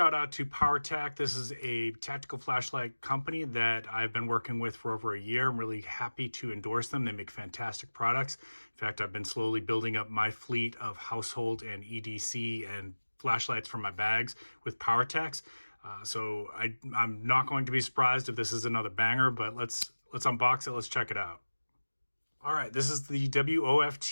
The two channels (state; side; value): inverted; both; correlation -1.00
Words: out to Powertac. This is a tactical flashlight company that I've been working with for over a year. I'm really happy to endorse them. They make fantastic products. In fact, I've been slowly building up my fleet of household and EDC and flashlights for my bags with Powertacs. So I'm not going to be surprised if this is another banger, but let's unbox it. Let's check it out. All right, this is the